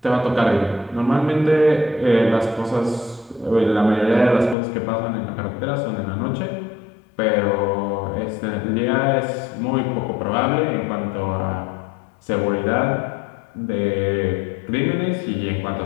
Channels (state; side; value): drops out; right; at 4.5 s